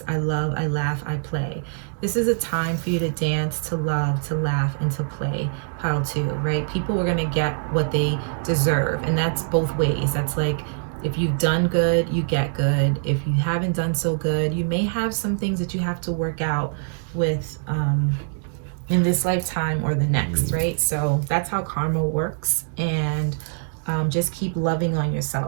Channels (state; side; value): silent; left; digital silence